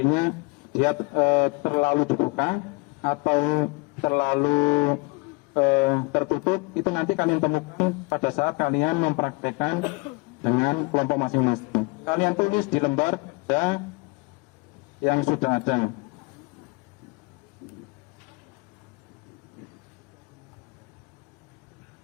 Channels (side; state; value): right; quieter; 27.4 dB